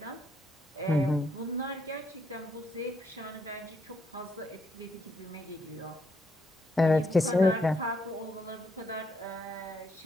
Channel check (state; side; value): normal; both; correlation 0.75